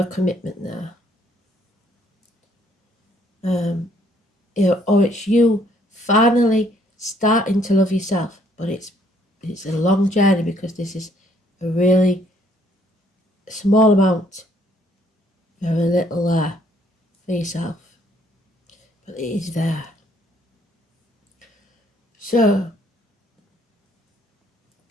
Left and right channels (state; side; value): normal; both; correlation 0.65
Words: commitment there. Or it's you finally starting to love yourself, but it's a long journey because this is a really small amount, very little there for yourself, but it is there. So